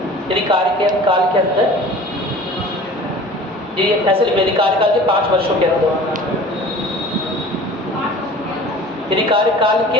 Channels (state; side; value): normal; both; correlation 0.43